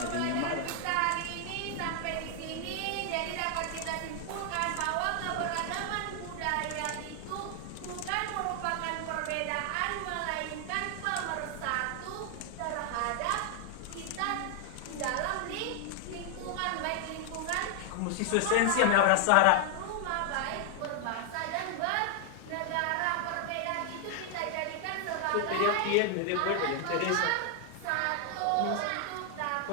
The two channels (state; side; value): different; both; correlation 0.00